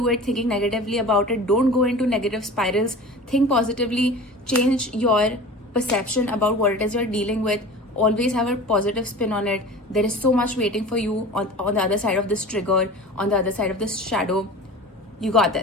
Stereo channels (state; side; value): normal; both; correlation 0.37